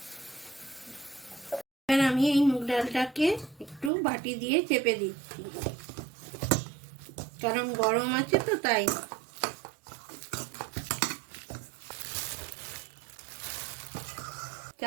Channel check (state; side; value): drops out; left; at 3.9 s